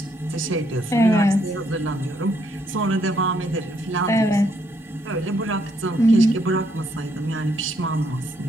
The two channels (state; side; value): normal; both; correlation 0.73